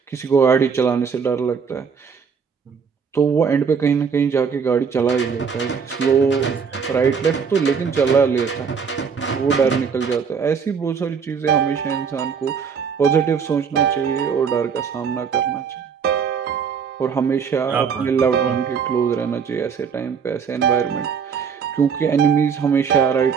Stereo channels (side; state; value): left; quieter; 6.3 dB